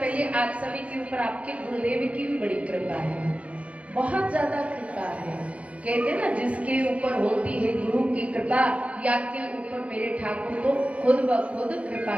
आप सभी के ऊपर आपके गुरुदेव की भी बड़ी कृपा है, बहुत ज्यादा कृपा है। कहते ना, जिसके ऊपर होती है गुरु की कृपा, या के ऊपर मेरे ठाकुर तो खुद ब खुद कृपा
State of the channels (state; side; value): late; left; 0.064 ms